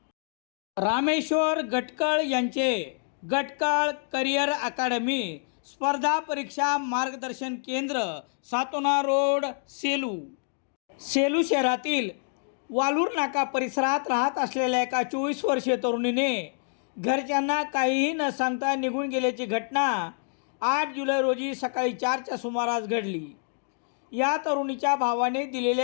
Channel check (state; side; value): silent; right; digital silence